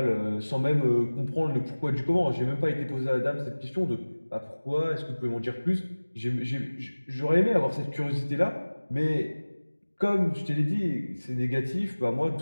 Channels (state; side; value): inverted; both; correlation -1.00